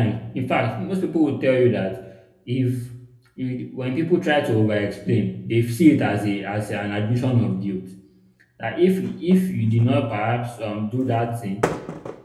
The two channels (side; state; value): both; identical; correlation 1.00